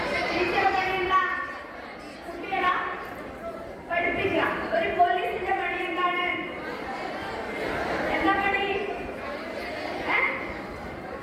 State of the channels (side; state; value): both; identical; correlation 1.00